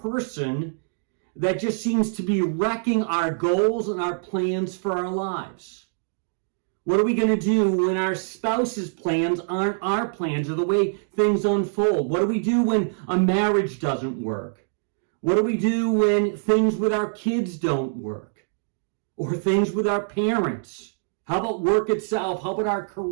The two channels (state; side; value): silent; left; digital silence